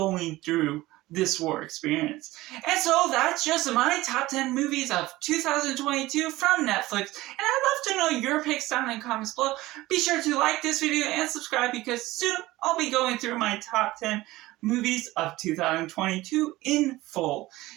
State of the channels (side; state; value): left; quieter; 18.2 dB